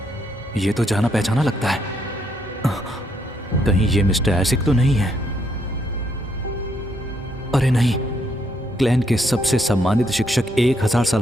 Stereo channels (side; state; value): both; normal; correlation 0.73